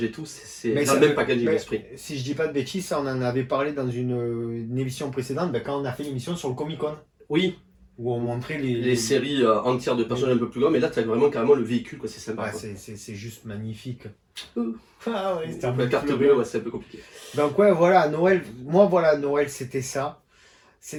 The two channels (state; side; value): identical; both; correlation 1.00